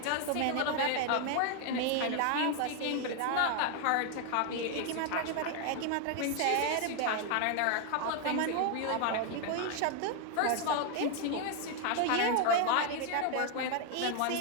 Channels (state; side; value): different; both; correlation 0.00